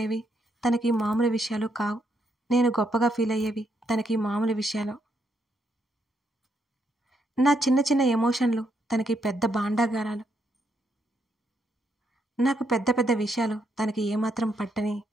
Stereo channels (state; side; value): normal; both; correlation 0.77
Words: తనకి మామూలు విషయాలు కావు. నేను గొప్పగా ఫీల్ అయ్యేవి తనకి మామూలు విషయాలు. నా చిన్న చిన్న ఎమోషన్లు తనకి పెద్ద భాండాగారాలు. నాకు పెద్ద పెద్ద విషయాలు తనకి ఏమాత్రం పట్టని